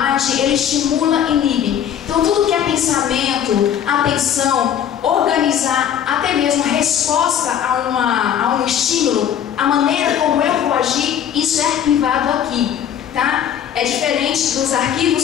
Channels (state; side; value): quieter; right; 9.4 dB